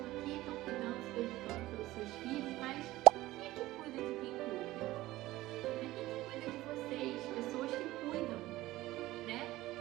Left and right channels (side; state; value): left; quieter; 17.1 dB